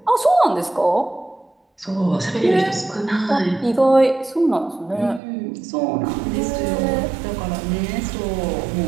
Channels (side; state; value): left; drops out; at 5.2 s